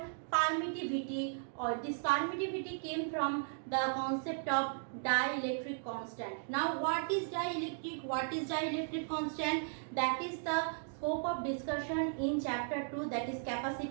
permittivity, or this permittivity came from the concept of dielectric constant. Now what is dielectric? What is dielectric constant? That is the scope of discussion in chapter 2, that is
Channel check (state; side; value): silent; left; digital silence